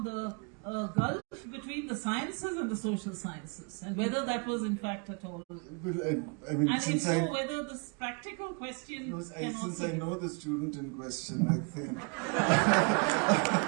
the gulf between the sciences and the social sciences and whether that was in fact at all? Well, I mean, and if so, whether this practical question since I know the student in question, I think.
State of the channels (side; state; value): left; quieter; 34.3 dB